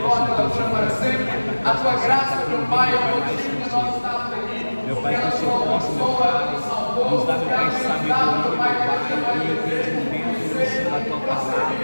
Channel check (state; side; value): inverted; both; correlation -1.00